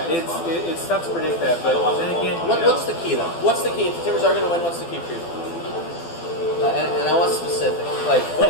it's tough to predict that, but then again, what's the key though? What's the key? If the Timbers are going to win, what's the key for you? And I want specific. Like,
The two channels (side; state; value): right; late; 12 ms